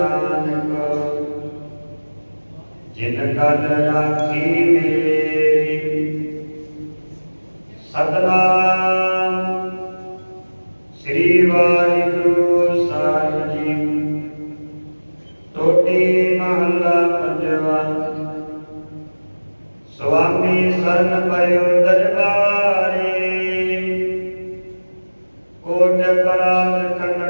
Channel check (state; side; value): inverted; both; correlation -1.00